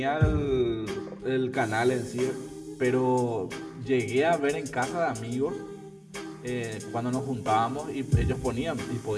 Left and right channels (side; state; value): both; identical; correlation 1.00